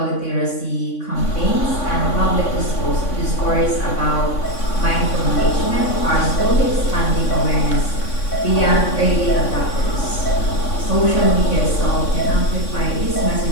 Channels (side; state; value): right; late; 3.5 ms